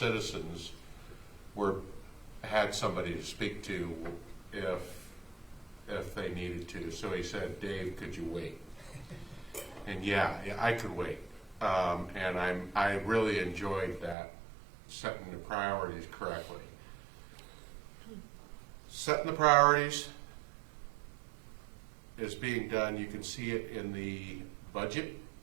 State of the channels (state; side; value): drops out; left; at 14.2 s